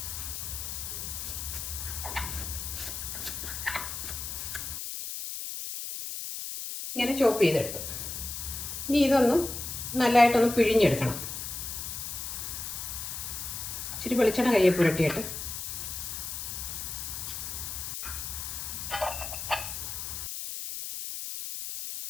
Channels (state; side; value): noise; left; hiss, 6 dB below the sound